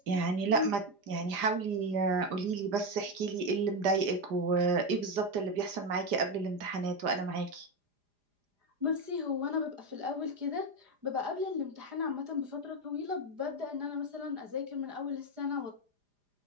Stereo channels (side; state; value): left; late; 4.9 ms